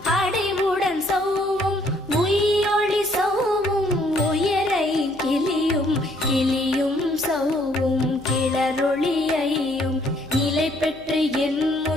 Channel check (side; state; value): left; noise; hum, 25 dB below the sound